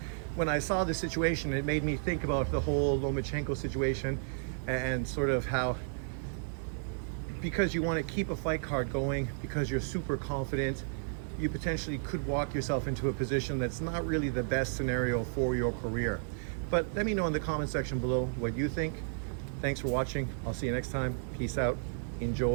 when I saw the situation, it made me think about the whole Lomachenko situation and sort of how, because you want to keep a fight card going, because you're super confident, you potentially could walk yourself into a position that's not really the best scenario for your career. But let me know in the comment section below what you think. Thanks for watching. I'll see you next time. Peace out.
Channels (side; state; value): left; silent; digital silence